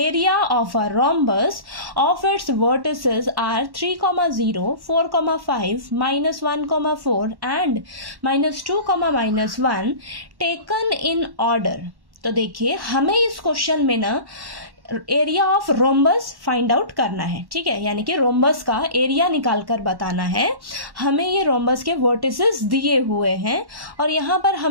of a rhombus of its vertices are 3,0, 4,5, -1,4 and -2, -1 taken in order. तो देखिए, हमें इस क्वेश्चन में ना area of rhombus find out करना है। ठीक है, यानी कि रोम्बस का एरिया निकाल कर बताना है। हमें ये रोम्बस के वर्टिसेस दिए हुए हैं और यहाँ पर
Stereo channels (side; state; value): left; late; 1.1 ms